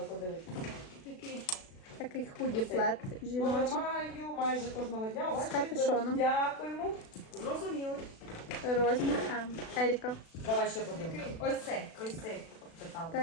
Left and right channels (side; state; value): right; late; 36 ms